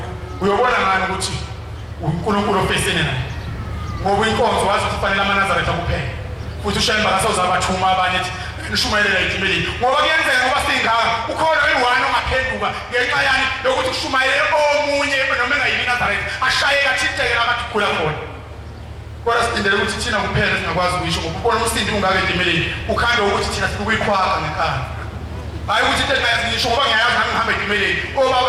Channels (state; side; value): identical; both; correlation 1.00